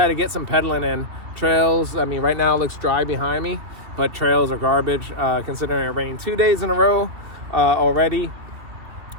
to get some pedaling in. Trails, I mean, right now it looks dry behind me, but trails are garbage, considering it rained 2 days in a row already.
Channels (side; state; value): left; late; 2.9 ms